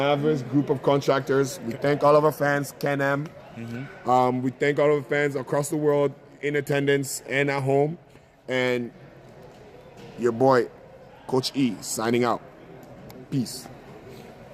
Group of Contractors. We thank all of our fans, Ken M, We thank all of the fans across the world in attendance and at home. And your boy, Coach E, signing out. Peace.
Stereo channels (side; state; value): both; identical; correlation 1.00